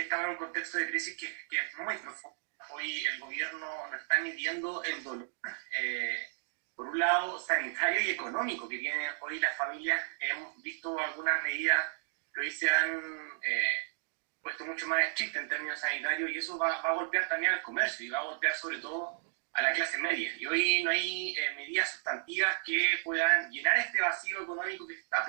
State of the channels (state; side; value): silent; left; digital silence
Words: estamos en un contexto de crisis que es muy profundo. hoy el gobierno nos está midiendo el dolor, por un lado sanitario y económico que tienen hoy las familias. Hemos visto algunas medidas que hoy se han puesto mucho más estrictas en términos sanitarios, y eso va a golpear también al comercio y va a golpear sobre todo a la clase media. Y hoy no hay medidas sustantivas que puedan llenar este vacío económico que se está